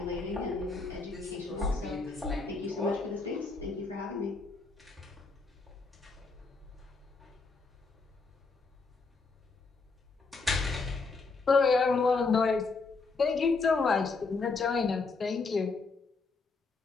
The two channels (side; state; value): right; quieter; 4.1 dB